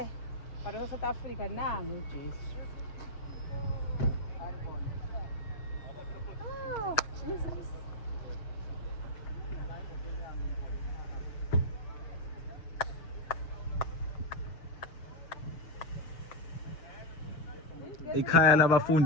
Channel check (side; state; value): right; late; 6.6 ms